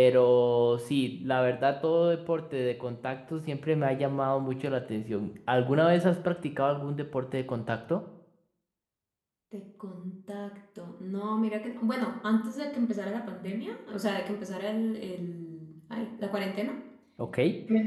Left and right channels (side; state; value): both; identical; correlation 1.00